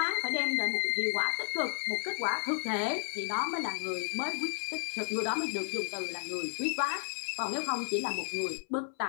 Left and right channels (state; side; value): silent; right; 56 dB below the other